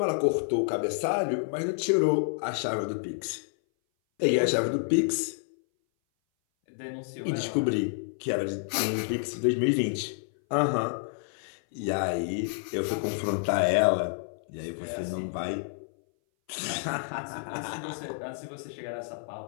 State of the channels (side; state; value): right; silent; 58 dB below the other